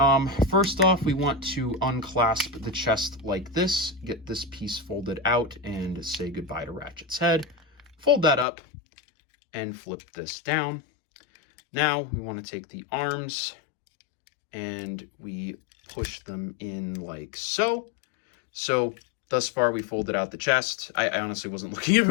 First off, we want to unclasp the chest like this, get this piece folded out, and say goodbye to Ratchet's head. Fold that up and flip this down. Now we want to take the arms and we push them in like so. So thus far we folded out the chest. I honestly wasn't looking if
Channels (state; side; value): drops out; right; at 8.5 s